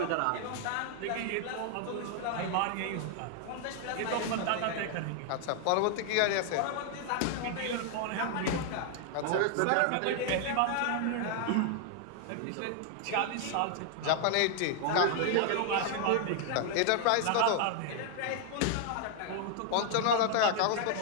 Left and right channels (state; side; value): different; both; correlation 0.00